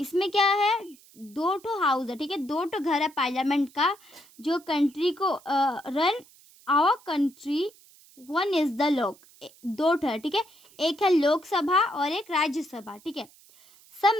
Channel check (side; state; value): right; noise; hiss, 26 dB below the sound